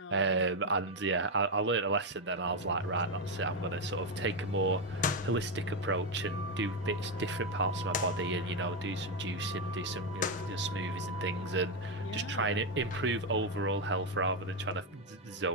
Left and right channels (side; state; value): both; normal; correlation 0.06